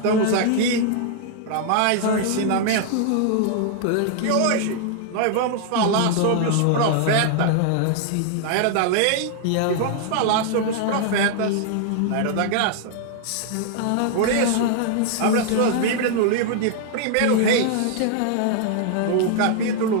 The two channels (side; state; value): both; different; correlation 0.00